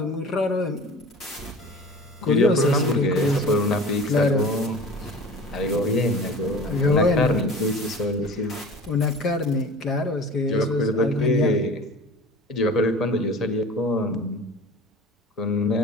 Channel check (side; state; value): both; normal; correlation 0.39